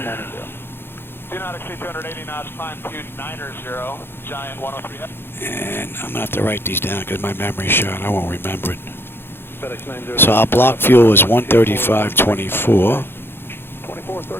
Do not exceed 280 knots, climb 290, Giant 103. And I'm going to have to write these down because my memory's shot. I won't remember it. So our block fuel is 135.24.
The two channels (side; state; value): right; late; 0.11 ms